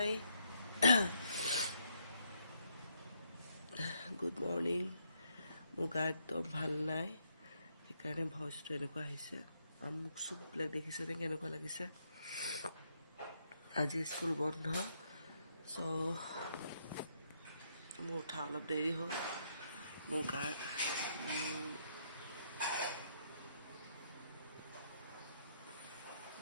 Good morning. মোৰ গা একদম ভাল নাই সেইকাৰণে ভইচটো এনেকুৱা আহিছে আৰু মোক চুপবিলাক দেখিছে নে কেনেকুৱা লাগিছে আজি স্কুল বন্ধ চ' মোৰ উঠা অলপ দেৰি হ'ল মোৰ গা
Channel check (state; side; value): inverted; both; correlation -0.75